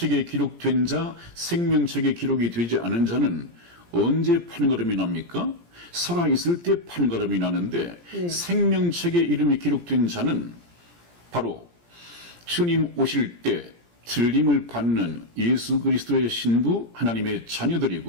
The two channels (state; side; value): late; left; 17 ms